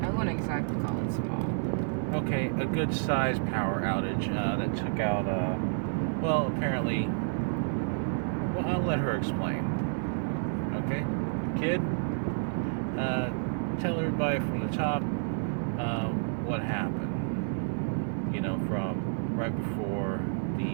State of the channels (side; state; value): left; silent; 58 dB below the other